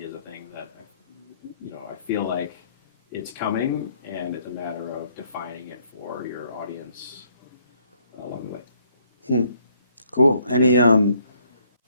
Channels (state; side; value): inverted; both; correlation -0.68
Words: is a thing that I feel like it's coming, and it's a matter of defining it for your audience along the way. Cool.